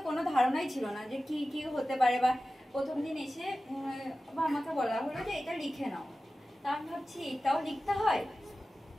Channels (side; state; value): both; normal; correlation 0.95